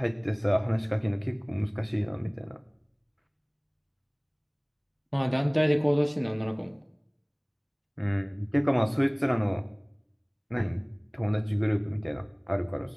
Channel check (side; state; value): both; identical; correlation 1.00